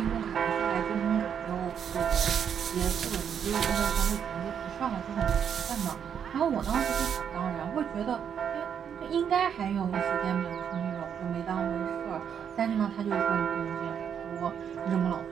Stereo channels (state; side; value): quieter; left; 8.0 dB